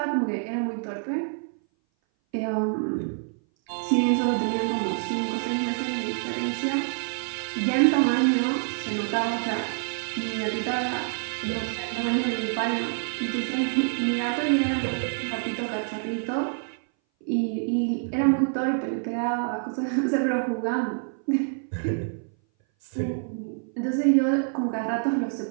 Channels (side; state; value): left; silent; 58 dB below the other